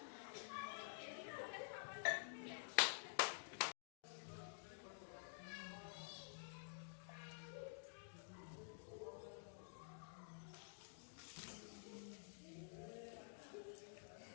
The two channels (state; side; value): silent; right; digital silence